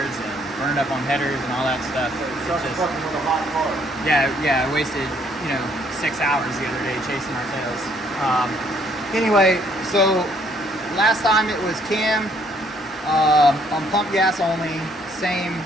and burned up on headers and all that stuff. Just fucking with a hot car. Yeah, I wasted 6 hours the other day chasing our tails. Anyway, so last time it was cam on pump gas only, same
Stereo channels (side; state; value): both; normal; correlation 0.66